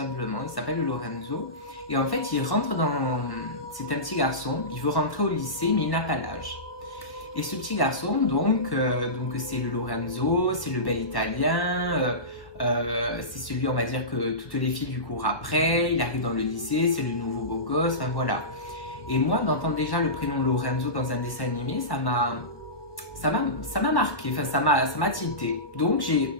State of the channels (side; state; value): right; late; 1.3 ms